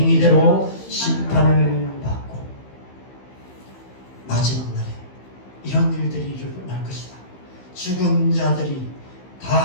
심판을 받고. 마지막 날에 이런 일들이 일어날 것이다. 죽은 자들이 다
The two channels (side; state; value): right; late; 15 ms